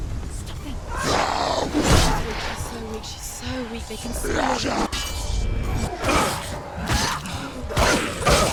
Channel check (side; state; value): both; identical; correlation 1.00